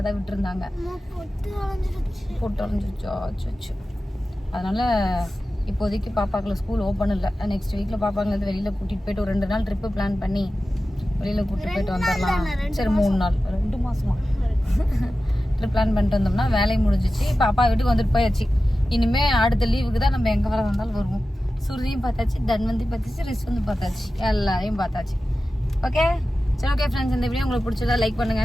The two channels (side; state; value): both; normal; correlation 0.94